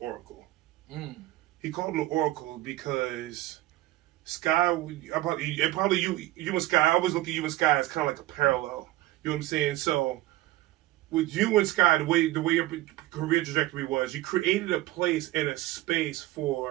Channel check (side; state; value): left; quieter; 16.9 dB